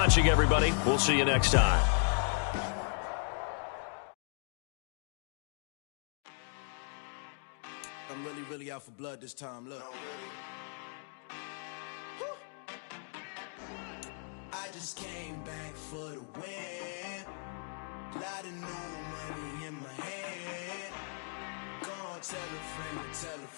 everybody. We'll see you next time. I'm really out for blood this time. Look. I just came back for the win. Lot of new money in my hand. Gonna tell a friend to tell a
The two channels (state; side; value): silent; right; 54 dB below the other